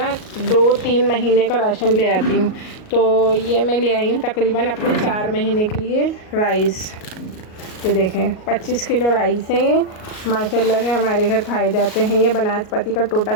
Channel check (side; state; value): right; late; 38 ms